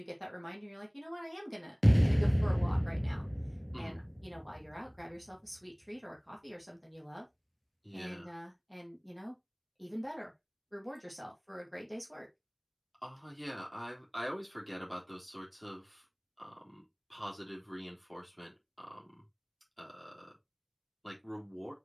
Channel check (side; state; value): both; identical; correlation 1.00